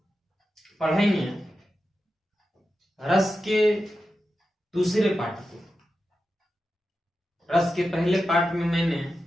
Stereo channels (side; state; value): both; normal; correlation 0.91